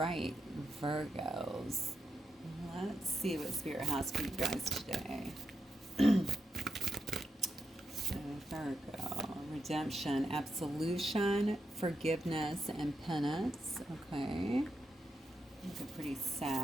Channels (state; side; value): normal; both; correlation 0.85